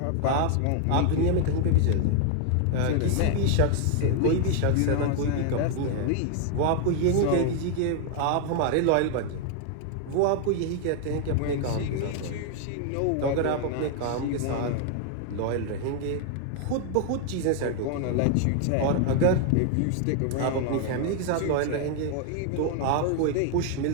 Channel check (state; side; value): different; both; correlation 0.00